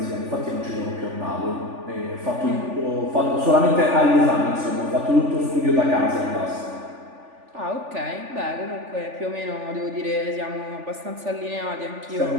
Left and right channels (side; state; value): left; late; 3.4 ms